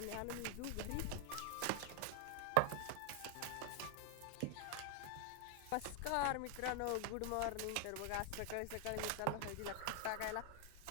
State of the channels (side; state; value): both; different; correlation 0.00